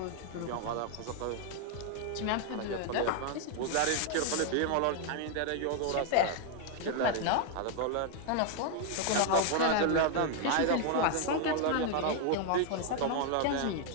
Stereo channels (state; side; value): different; both; correlation 0.00